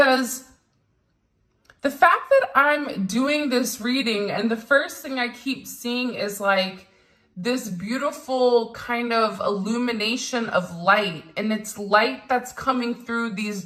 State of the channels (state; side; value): identical; both; correlation 1.00